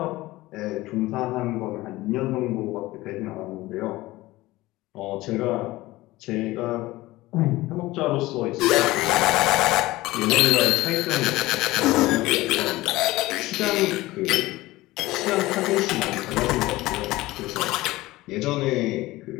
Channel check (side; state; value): right; quieter; 18.6 dB